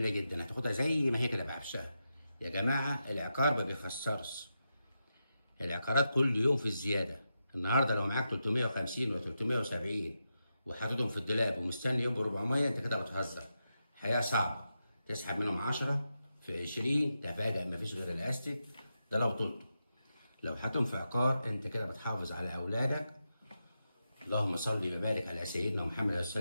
جدا، هتاخدها زي ما هي كده بعفشها. يا جماعه العقار ما بيخسرش، العقارات كل يوم في الزياده. النهارده لو معاك 350 و 370 وحاططهم في الدولاب ومستني يوم ب 400، انت كده بتهزر. الحياه صعبه، تسحب منهم 10 في 20 تفاجأ مفيش غير الاستيك ده لو طلته. لو حاطهم في عقار انت كده بتحافظ على اولادك. اللهم صل وبارك على سيدنا محمد عليه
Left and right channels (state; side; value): inverted; both; correlation -0.88